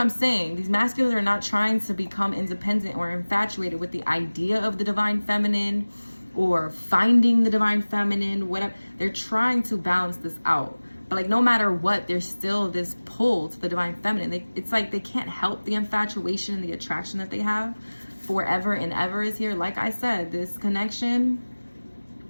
saying. These masculines are not trying to become independent or infatuated with the idea of the divine feminine or finding the divine feminine, whatever. They're trying to balance this out. But like, no matter what, there's still this pull to the divine feminine. It's like they can't help the infatuation and the attraction that they have. Forever and ever is here. Like I said, this connection,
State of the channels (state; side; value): inverted; both; correlation -1.00